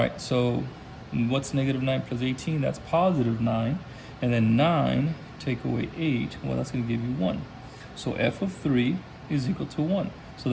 so what's -9 plus 18? That's +9. And then 9 take away 8, well, that's gonna give you 1. So f of 3 is equal to 1. So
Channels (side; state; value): both; identical; correlation 1.00